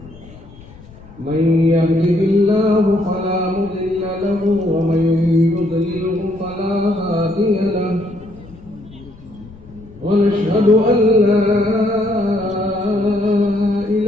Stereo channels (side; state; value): left; noise; rumble, 21 dB below the sound